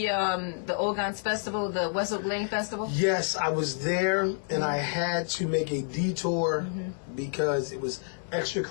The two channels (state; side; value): silent; right; digital silence